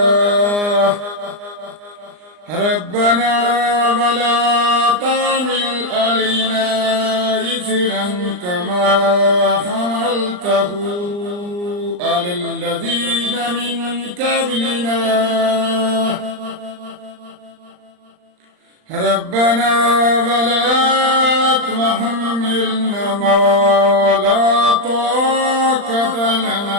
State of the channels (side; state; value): left; late; 39 ms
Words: ربنا ولا تحمل علينا إصرا كما حملته على الذين من قبلنا ربنا ولا تحملنا ما لا طاقة